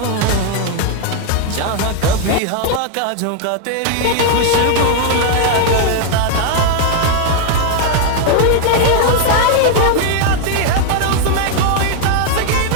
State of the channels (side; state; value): both; different; correlation 0.00